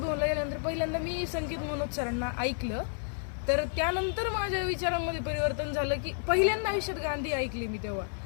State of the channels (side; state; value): right; silent; digital silence